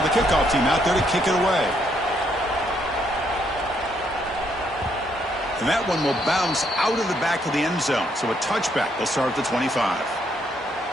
the kickoff team out there to kick it away. And that one will bounce out of the back of the end zone. So a touchback. They'll start at the 25.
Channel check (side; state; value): both; normal; correlation 0.73